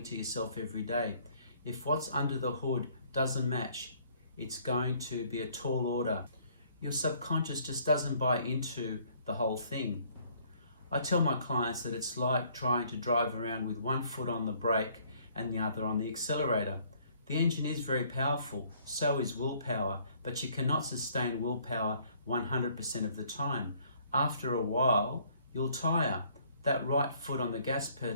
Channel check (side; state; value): both; inverted; correlation -0.61